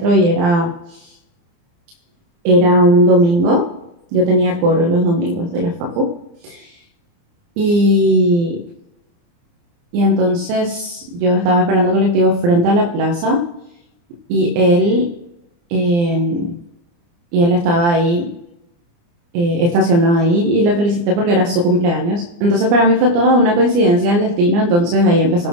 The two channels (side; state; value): left; late; 29 ms